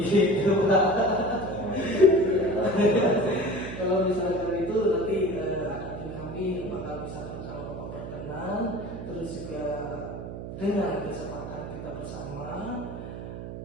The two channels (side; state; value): right; noise; hum, 9 dB below the sound